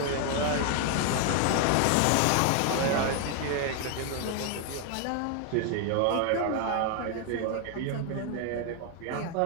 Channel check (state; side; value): different; both; correlation 0.01